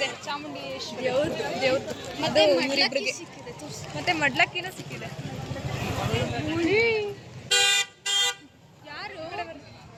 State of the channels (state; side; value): identical; both; correlation 1.00